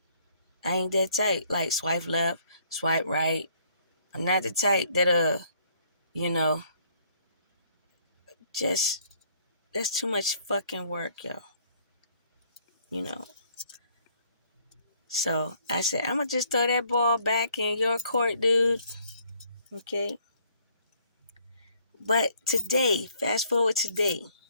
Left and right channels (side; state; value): both; inverted; correlation -0.65